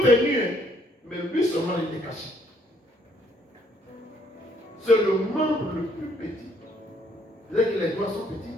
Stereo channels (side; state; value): both; normal; correlation 0.67